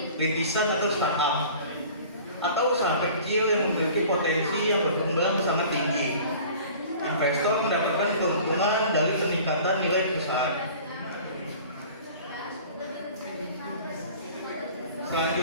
rintisan atau startup atau usaha kecil yang memiliki potensi yang berkembang sangat tinggi. Investor mendapatkan keuntungan dari peningkatan nilai perusahaan.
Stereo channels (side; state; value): both; inverted; correlation -0.45